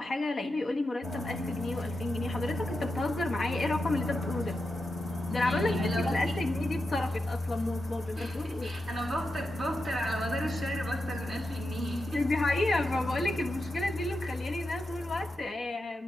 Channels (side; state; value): both; normal; correlation 0.88